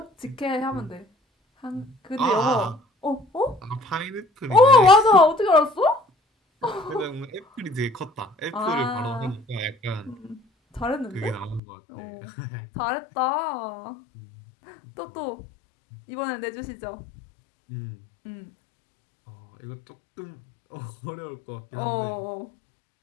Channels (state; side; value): drops out; right; at 11.6 s